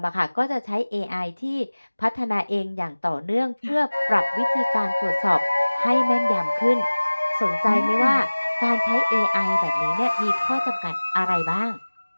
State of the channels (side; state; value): both; inverted; correlation -1.00